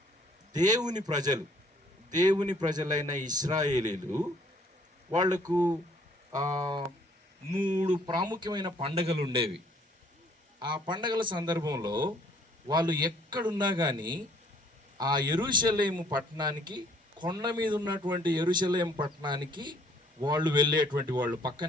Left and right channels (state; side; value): normal; both; correlation 0.61